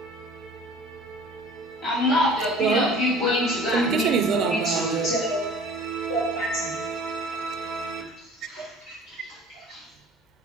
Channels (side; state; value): both; normal; correlation 0.46